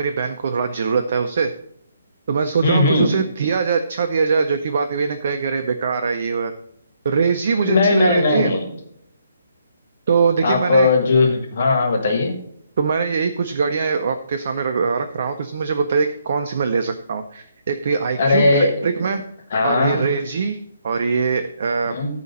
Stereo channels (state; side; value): inverted; both; correlation -0.73